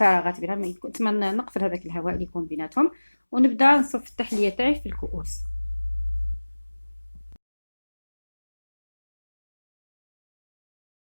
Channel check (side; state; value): both; inverted; correlation -1.00